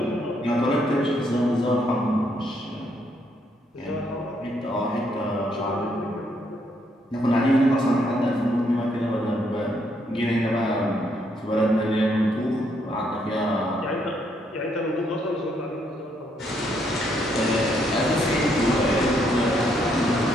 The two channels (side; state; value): both; normal; correlation 0.73